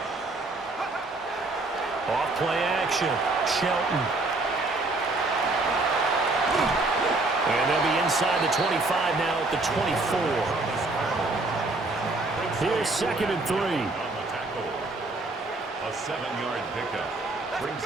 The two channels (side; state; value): left; quieter; 3.1 dB